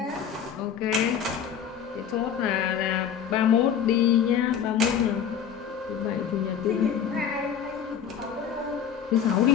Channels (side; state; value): right; quieter; 8.2 dB